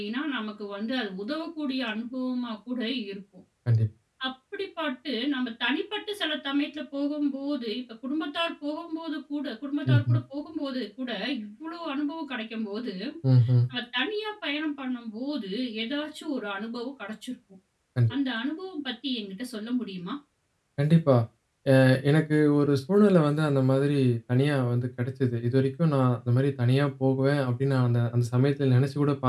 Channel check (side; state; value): both; identical; correlation 1.00